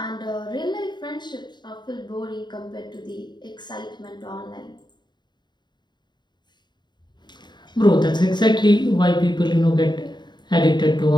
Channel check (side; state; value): right; late; 0.21 ms